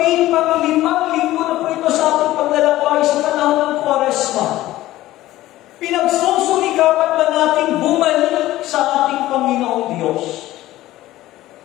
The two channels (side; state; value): right; quieter; 15.8 dB